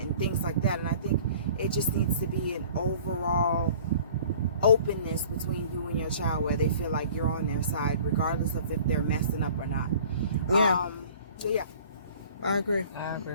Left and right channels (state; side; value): inverted; both; correlation -0.48